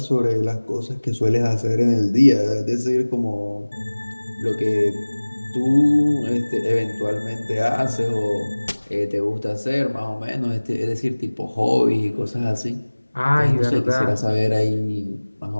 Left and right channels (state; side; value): inverted; both; correlation -1.00